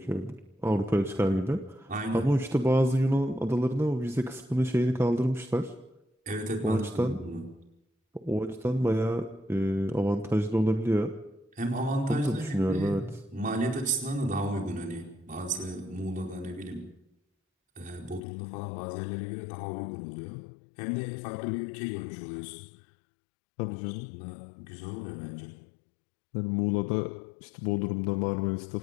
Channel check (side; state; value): right; drops out; at 18.2 s